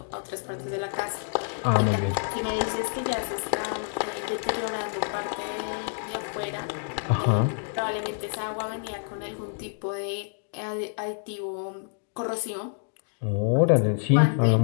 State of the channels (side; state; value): right; silent; 60 dB below the other